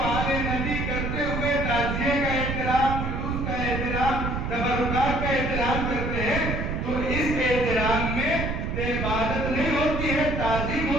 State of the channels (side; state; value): right; noise; rumble, 2 dB below the sound